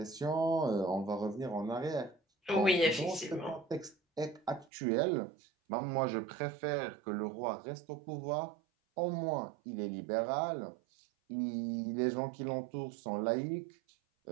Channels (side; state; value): left; drops out; at 4.7 s